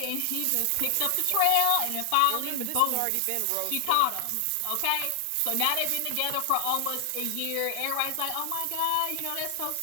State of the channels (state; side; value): different; both; correlation 0.00